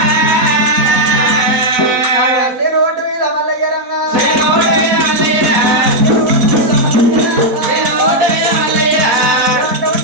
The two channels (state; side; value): late; left; 4.0 ms